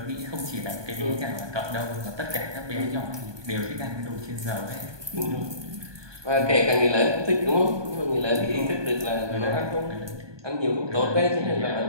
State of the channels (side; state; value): left; late; 1.2 ms